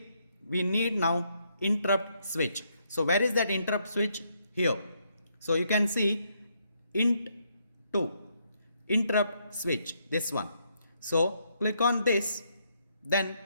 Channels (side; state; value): both; inverted; correlation -0.75